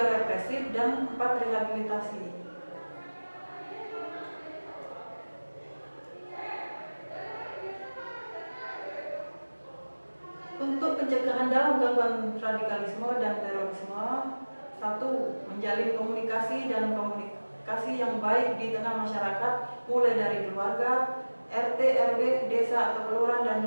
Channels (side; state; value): both; inverted; correlation -1.00